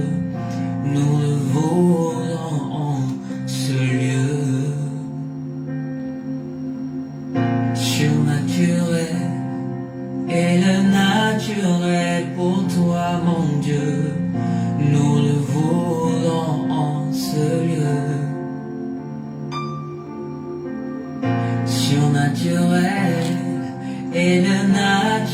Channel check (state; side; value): identical; both; correlation 1.00